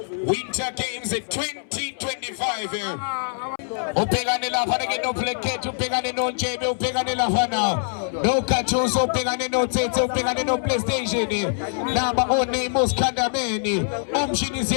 Winter Games 2025. Upegane lafana ke no plekete, upegane no njebe, upegane lafana no kachuso, upegane no tete, upegane no PlayStation. Namba one muskandameni, umshini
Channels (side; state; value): right; silent; 63 dB below the other